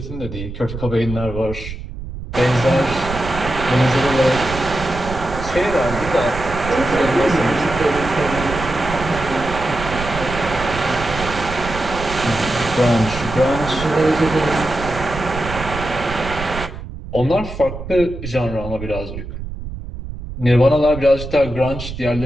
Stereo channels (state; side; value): noise; right; rumble, 9 dB below the sound